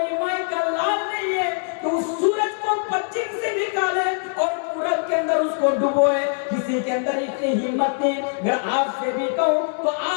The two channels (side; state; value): right; silent; 64 dB below the other